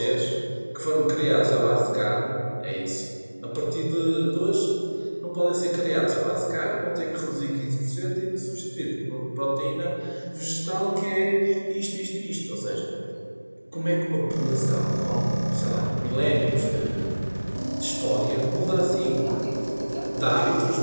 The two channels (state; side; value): inverted; both; correlation -1.00